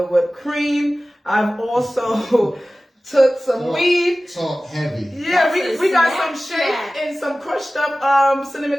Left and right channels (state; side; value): normal; both; correlation 0.96